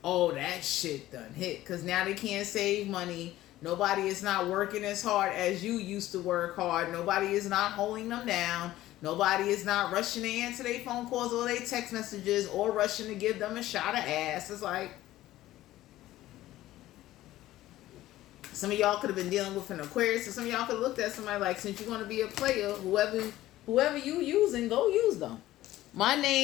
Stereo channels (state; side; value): quieter; right; 15.2 dB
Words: oh, that shit done hit. Because now they can't save money. Nobody is not working as hard as you used to work hard. Nobody is not holding them down. Nobody is not rushing to answer their phone calls or their text messages or rushing to give them a shot of ass. It's like, some of y'all could have been dealing with an Aquarius, and some of y'all could have looked at somebody like, since you're going to be a player, whoever you using, go use them. My